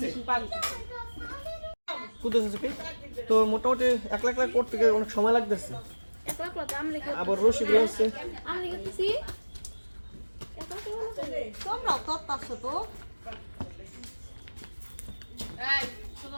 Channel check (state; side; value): inverted; both; correlation -1.00